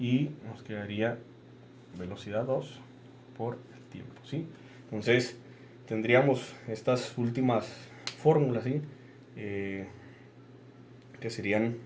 nos quedaría velocidad 2 por el tiempo, ¿sí? Entonces tendríamos estas últimas fórmulas, ¿sí? Que serían,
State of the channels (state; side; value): identical; both; correlation 1.00